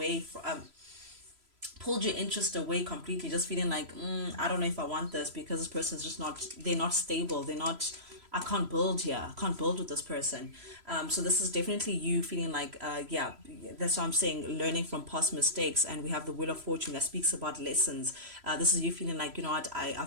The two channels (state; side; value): late; left; 3.0 ms